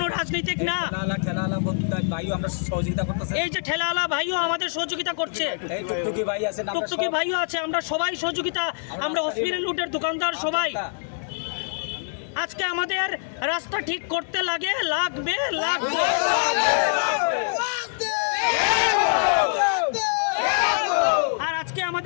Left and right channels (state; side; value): silent; right; 62 dB below the other